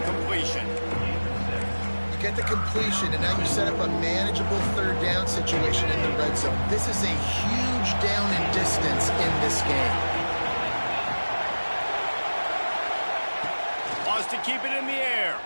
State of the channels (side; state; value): both; inverted; correlation -1.00